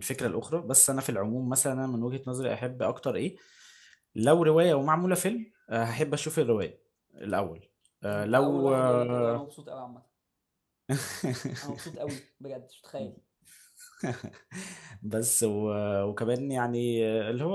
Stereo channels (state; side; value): identical; both; correlation 1.00